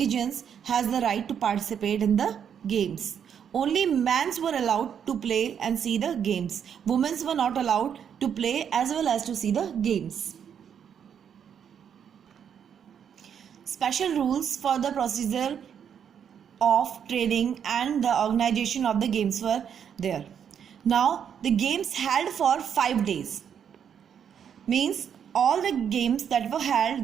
has the right to participate in the games. Only men were allowed to play and see the games. Women were not allowed to play as well as to see the games. Special rules for the procedure of training and the organization of the games were there. Now the games held for 5 days, means all the games that were held,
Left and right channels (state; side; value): quieter; left; 8.1 dB